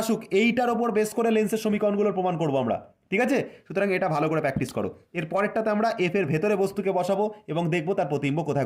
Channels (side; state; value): both; identical; correlation 1.00